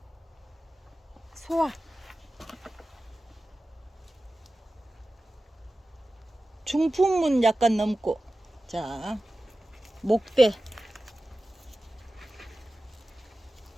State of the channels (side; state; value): both; normal; correlation 0.95